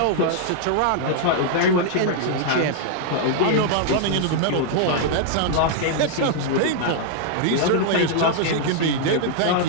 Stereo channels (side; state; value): both; different; correlation -0.01